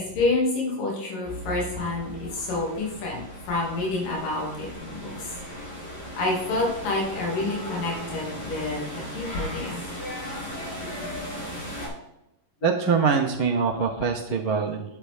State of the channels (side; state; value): right; late; 11 ms